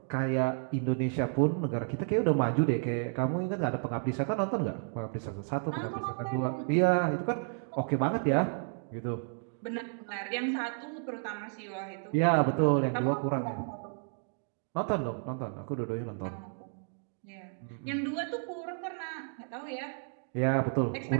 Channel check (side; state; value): left; silent; 56 dB below the other